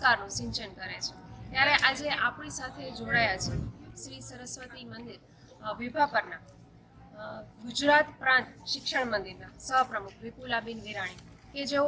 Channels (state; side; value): identical; both; correlation 1.00